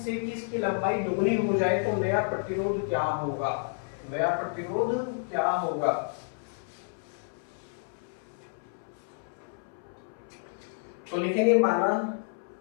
कि इसकी लंबाई दुगनी हो जाए तो नया प्रतिरोध क्या होगा। नया प्रतिरोध क्या होगा। तो लिखेंगे माना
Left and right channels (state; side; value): silent; right; 58 dB below the other